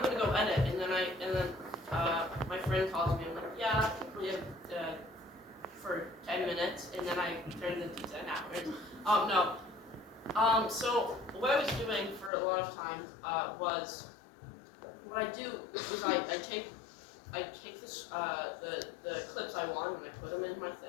gonna go edit, and then my friend calls me. I'm like, yeah, we have for 10 minutes, and then I turned it into 10 hours. No. So what I was doing for a lot of time was what I do is I take this the clips I want and I put them in my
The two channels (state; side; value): drops out; right; at 12.3 s